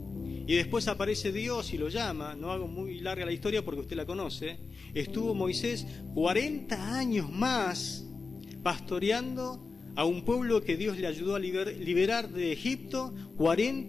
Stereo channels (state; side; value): quieter; right; 4.4 dB